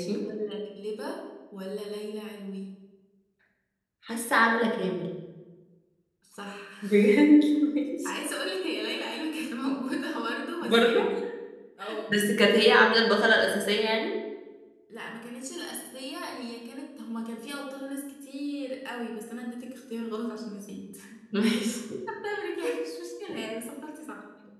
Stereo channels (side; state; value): both; identical; correlation 1.00